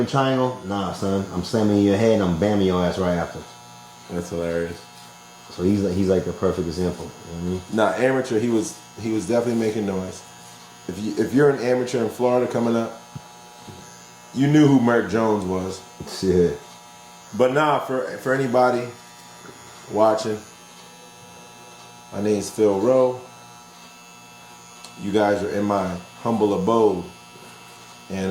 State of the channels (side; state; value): both; identical; correlation 1.00